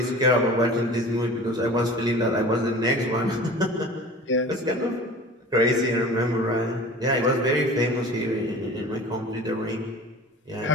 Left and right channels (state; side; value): normal; both; correlation 0.41